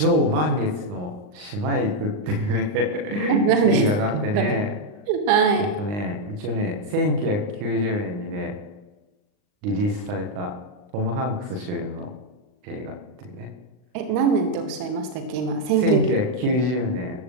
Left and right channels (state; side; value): late; left; 39 ms